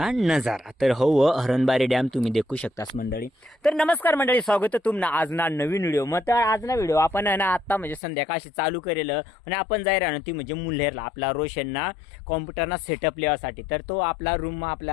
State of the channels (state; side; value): drops out; right; at 8.0 s